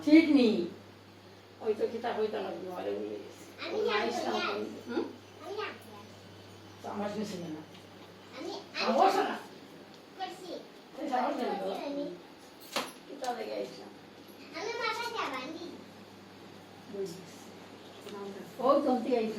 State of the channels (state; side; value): identical; both; correlation 1.00